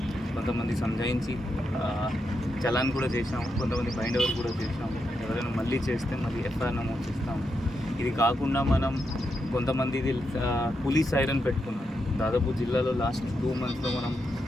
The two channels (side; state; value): both; normal; correlation 0.84